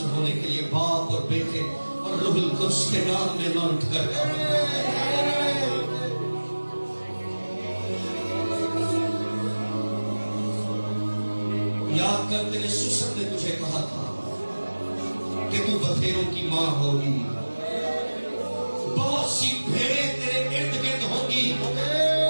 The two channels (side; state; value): both; inverted; correlation -1.00